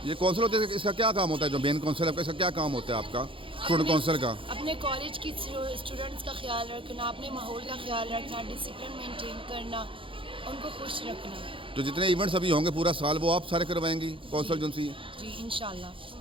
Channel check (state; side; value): late; left; 0.25 ms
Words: یہ کونسل ہوتے ہیں، اس کا کیا کام ہوتا ہے؟ جو مین کونسل ہے اس کا کیا کام ہوتا ہے آپ کا اسٹوڈنٹ کونسل کا؟ اپنے کالج کی اسٹوڈنٹس کا خیال رکھنا، اپنے ماحول کا خیال رکھنا، ڈسپلن مینٹین کرنا، ان کو خوش رکھنا. جو جتنے ایونٹس ابھی ہوں گے پورا سال وہ آپ سارے کروائیں گی کونسل جن سی؟ جی انشاءاللہ.